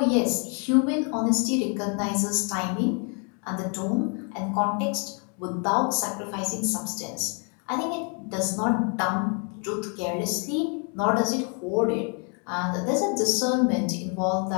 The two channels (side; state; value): right; quieter; 38.4 dB